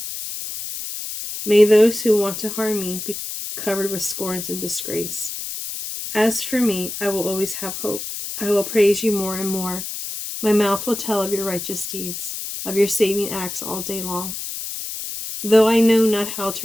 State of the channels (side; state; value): left; noise; hiss, 7 dB below the sound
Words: May those who want to harm me covered with scorns and disgrace. As for me, I will always have hope. I will praise you more and more. My mouth will tell of your righteous deeds, of your saving acts all day long. Though I know not how